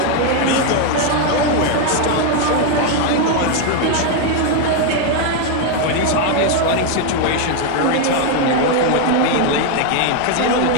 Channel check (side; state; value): both; different; correlation 0.01